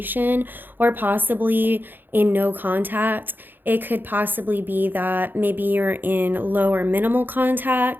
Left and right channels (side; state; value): left; late; 0.092 ms